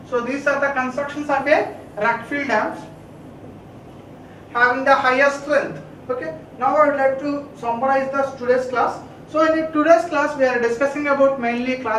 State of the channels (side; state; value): both; identical; correlation 1.00